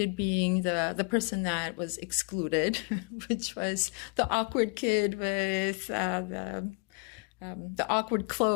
being the person that was excluded, which was the awkward kid with the awkward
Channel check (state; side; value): quieter; right; 33.8 dB